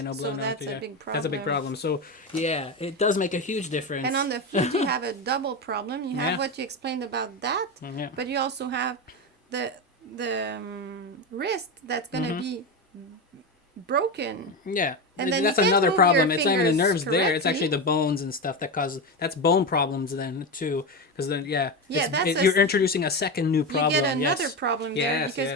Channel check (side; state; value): both; normal; correlation 0.16